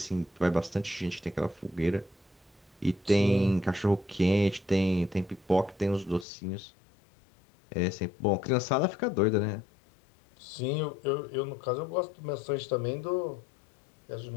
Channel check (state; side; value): drops out; right; at 6.2 s